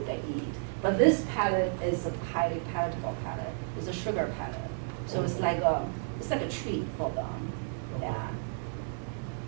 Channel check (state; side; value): silent; left; digital silence